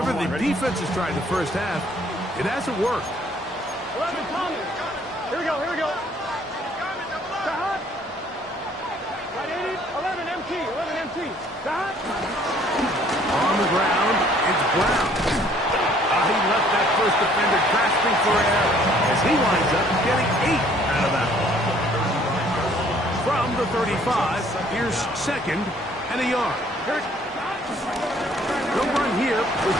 the defense has tried in the first half, it hasn't worked. 11, Tommy. Here we go, here we go. Stop. Right, 80, 11, MT, 11, MT. Stop. On the ground, it's Brown. He left that first defender grasping for air as he winds up getting 8 out of that one. From the 35, here's second and a yard. No run here with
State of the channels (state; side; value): normal; both; correlation 0.60